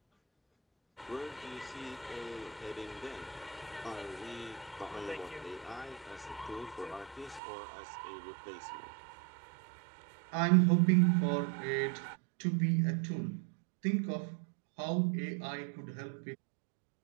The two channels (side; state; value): left; drops out; at 7.4 s